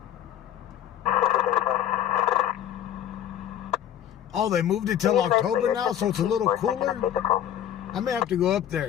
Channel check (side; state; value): right; quieter; 10.7 dB